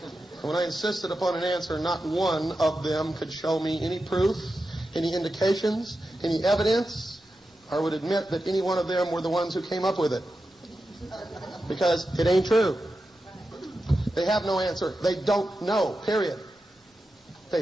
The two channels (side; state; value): both; normal; correlation 0.90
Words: When I insisted upon an answer, not one of them could show me any proof, any indications, any evidence, or would admit that any one of them were the ones who came up with it. Because it ain't true. They have no answer. They don't know, period. They